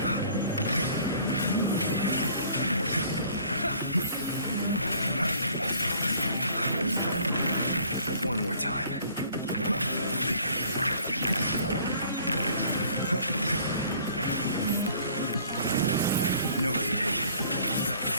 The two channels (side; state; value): both; inverted; correlation -0.56